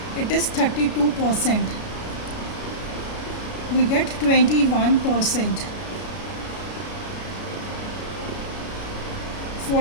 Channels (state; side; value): late; right; 33 ms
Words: It is 32%. We get 21%.